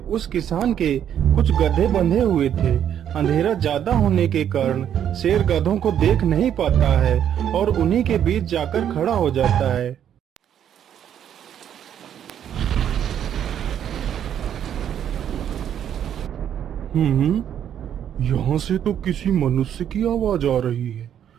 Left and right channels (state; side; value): quieter; left; 9.6 dB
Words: किसान के कुछ गधे बंधे हुए थे। अंधेरा ज्यादा होने के कारण शेर गधों को देख नहीं पाता है और उन्हीं के बीच जाकर खड़ा हो जाता है। यहाँ से तो किसी मनुष्य की आवाज आ रही है।